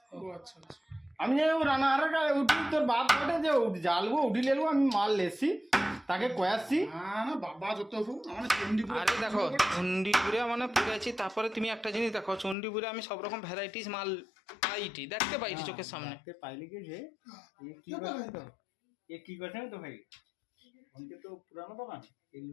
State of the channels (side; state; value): right; drops out; at 12.6 s